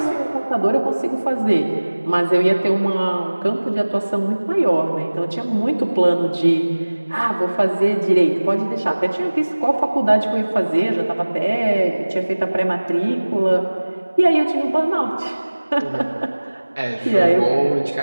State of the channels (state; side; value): inverted; both; correlation -1.00